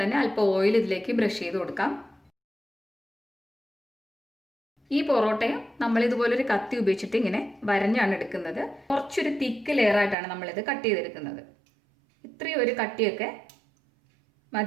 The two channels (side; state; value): left; drops out; at 10.2 s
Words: തന്നെ അല്പം ഓയിൽ ഇതിലേക്ക് ബ്രഷ് ചെയ്ത് കൊടുക്കാം. ഈ പൊറോട്ടയും നമ്മൾ ഇതുപോലൊരു കത്തി ഉപയോഗിച്ചിട്ട് ഇങ്ങനെ വരഞ്ഞാണ് എടുക്കുന്നത്. കുറച്ചൊരു തിക്ക് ലെയറായിട്ടാണ് നമ്മളിത് കട്ട് ചെയ്തെടുക്കുന്നത്. ഇത്രയും ഒരു കട്ടിയൊക്കെ